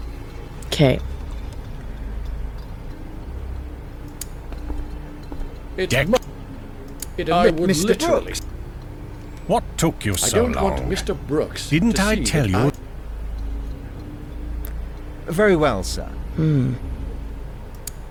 Okay. Deck. I would Mr. literally. Brooks. What took you I so don't long? want Mr. Brooks. Didn't to I see tell that you? Very well, sir. Hmm.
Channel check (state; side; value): identical; both; correlation 1.00